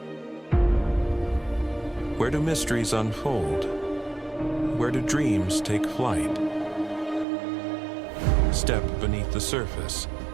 Where do mysteries unfold? Where do dreams take flight? Step beneath the surface,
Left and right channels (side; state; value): left; drops out; at 7.2 s